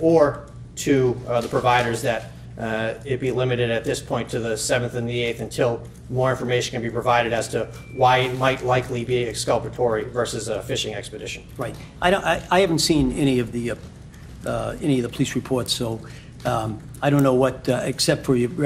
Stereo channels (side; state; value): both; identical; correlation 1.00